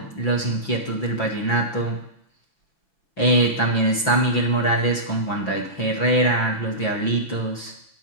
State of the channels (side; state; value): right; late; 5.9 ms